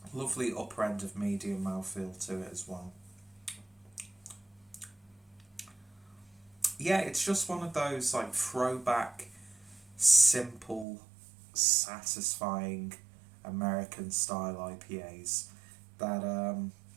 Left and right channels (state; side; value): drops out; left; at 10.9 s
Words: Lovely upper end of medium mouthfeel to it as well. Yeah, it's just one of those like throwback, simple, satisfying American style IPAs that